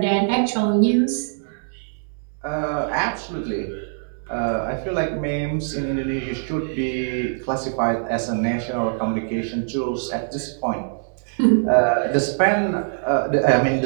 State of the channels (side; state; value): left; silent; digital silence